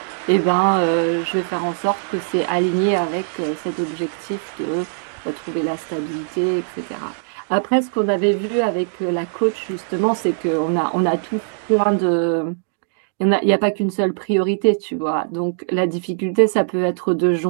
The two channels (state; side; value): silent; left; digital silence